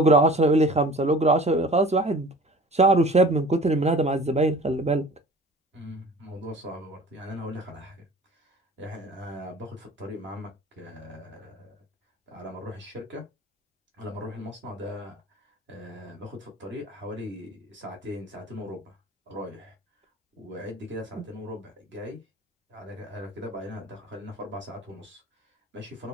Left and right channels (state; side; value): normal; both; correlation 0.44